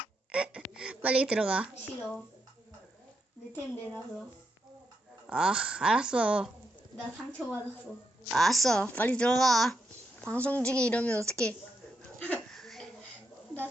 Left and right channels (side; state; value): both; normal; correlation 0.82